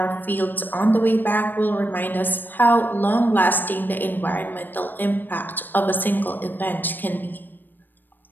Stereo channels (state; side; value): late; right; 0.092 ms